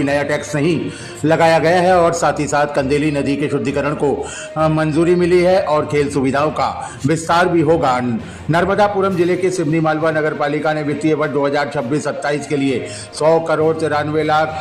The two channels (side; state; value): both; identical; correlation 1.00